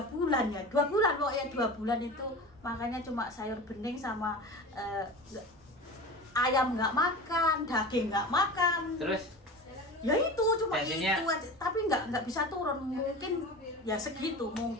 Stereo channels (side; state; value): both; normal; correlation 0.33